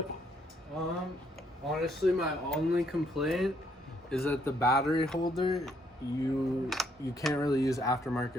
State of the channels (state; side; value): normal; both; correlation 0.70